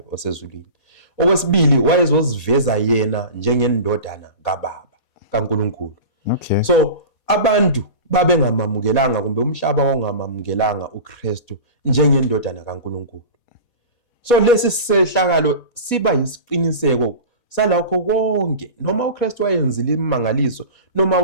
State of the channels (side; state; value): right; late; 4.2 ms